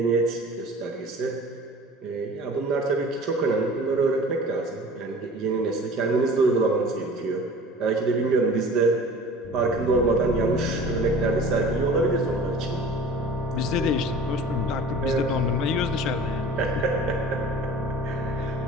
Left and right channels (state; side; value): normal; both; correlation 0.43